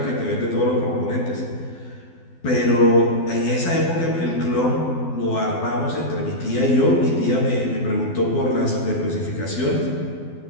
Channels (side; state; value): right; late; 12 ms